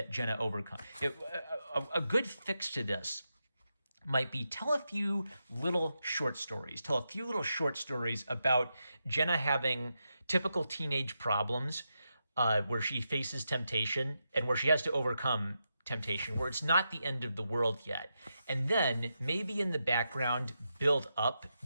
Jenna overcomes. A good fix to this might be tell a few little short stories about Jenna having typical teenage problems where she faces temptation and where she has to overcome temptation, where it's not the end of the world yet. And then maybe in the background, build up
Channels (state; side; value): inverted; both; correlation -0.86